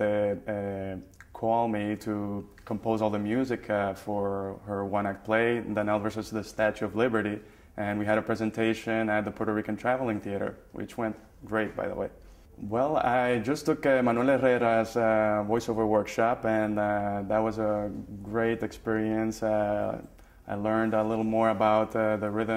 call me to compose all the music for her one-act play, Danelle versus the Statue of Liberty, and we had a presentation at the Puerto Rican Traveling Theater, which went great, by the way. Well, I just took Manuel Herrera's voiceover workshop, and that was a great experience. I learned a little more about the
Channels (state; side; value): identical; both; correlation 1.00